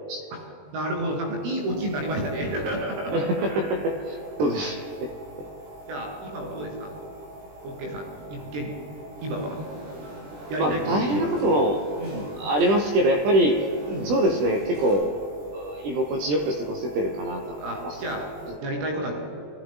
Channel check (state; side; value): late; left; 20 ms